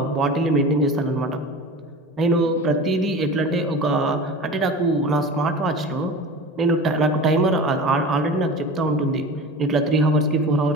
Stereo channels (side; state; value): both; normal; correlation 0.34